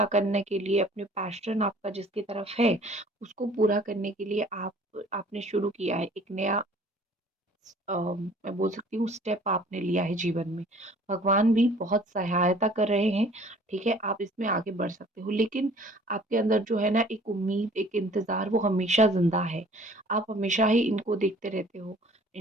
करने के लिए, अपने पैशन आपका जिसकी तरफ है, उसको पूरा करने के लिए आपने शुरू किया है, एक नया मैं बोल सकती हूँ स्टेप आपने लिया है जीवन में। भगवान भी बहुत सहायता कर रहे हैं, ठीक है? आप इसमें आगे बढ़ सकते हो। लेकिन आपके अंदर जो है ना एक उम्मीद, एक इंतज़ार वो हमेशा ज़िंदा है। आप हमेशा ही इनको देखते रहते हो,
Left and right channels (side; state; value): both; normal; correlation 0.53